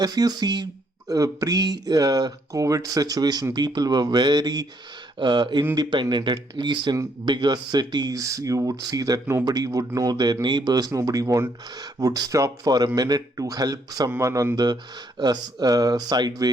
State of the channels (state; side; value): normal; both; correlation 0.71